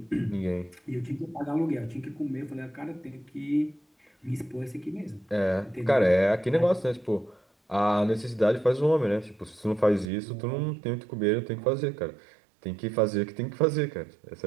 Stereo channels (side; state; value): left; drops out; at 10.1 s